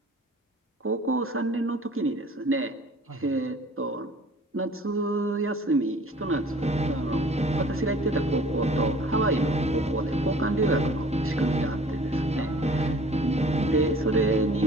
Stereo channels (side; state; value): both; normal; correlation 0.49